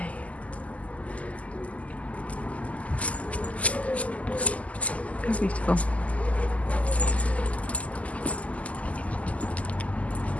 Very beautiful. So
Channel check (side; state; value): right; late; 0.069 ms